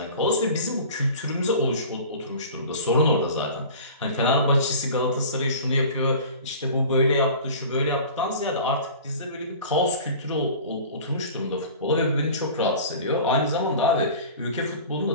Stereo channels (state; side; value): inverted; both; correlation -0.40